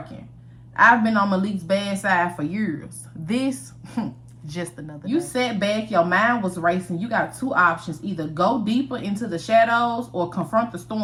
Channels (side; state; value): both; identical; correlation 1.00